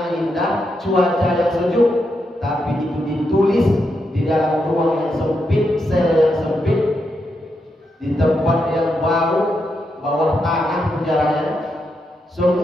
indah, cuaca yang sejuk, tapi itu ditulis di dalam ruang yang sempit, sel yang sempit, di tempat yang bau, bawah tanah penjaranya.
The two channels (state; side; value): normal; both; correlation 0.83